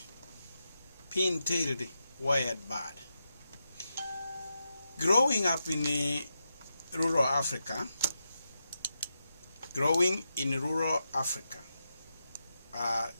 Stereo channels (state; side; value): inverted; both; correlation -0.87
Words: pintailed wired bird. Growing up in rural Africa,